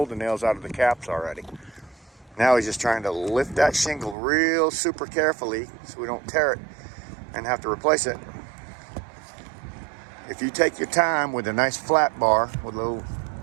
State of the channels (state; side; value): drops out; left; at 4.2 s